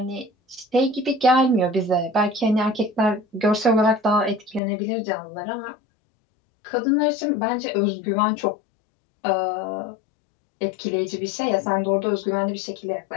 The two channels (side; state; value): right; drops out; at 4.6 s